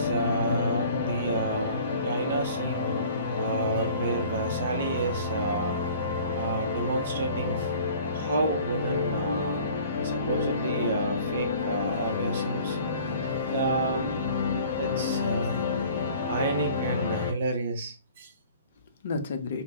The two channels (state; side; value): inverted; both; correlation -0.49